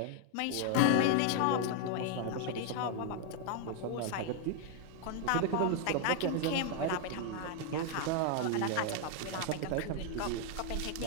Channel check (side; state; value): both; different; correlation 0.00